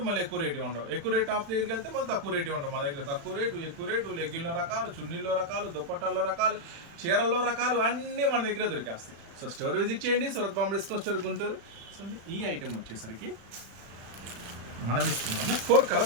మళ్ళీ ఎక్కువ రేటు ఉండవు. ఎక్కువ రేటు టాప్స్ దగ్గరికి వెళ్తే మళ్ళీ తక్కువ రేటు ఉండవు. మన దగ్గర తక్కువ రేటు, ఎక్కువ రేటు, లెగ్గిన్లో రకాలు, చున్నీల్లో రకాలు, దుప్పట్టాల్లో రకాలు, చీరల్లో రకాలు అన్నీ మన దగ్గర దొరికేస్తాయి. సో స్టోర్ విజిట్ చేయండి, Surat Bombay discount store Guntur. So ఈ ఐటెం వచ్చేసరికి మనం ఇస్తున్నాము 4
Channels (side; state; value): left; late; 36 ms